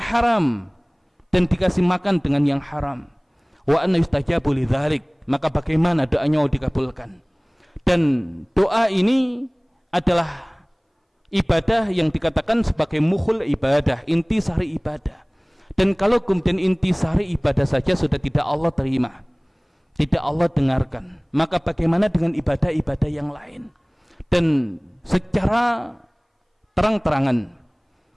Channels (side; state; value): both; identical; correlation 1.00